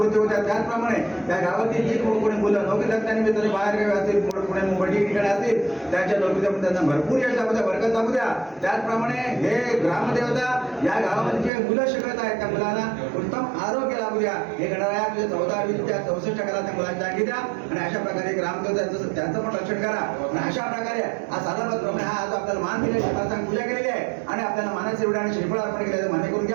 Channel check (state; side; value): drops out; left; at 11.5 s